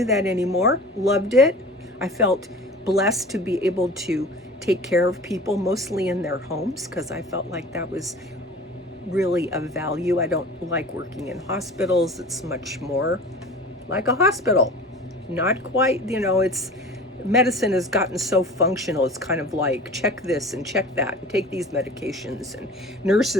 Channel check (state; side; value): normal; both; correlation 0.39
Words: that anymore. Loved it. I felt blessed to be able to take care of people, mostly in their homes, because I felt like that was really of value. I don't like working in hospitals. It's much more like a hospital. Not quite, it's medicine has gotten so functional. It's kind of like check this and check that and take these medications, and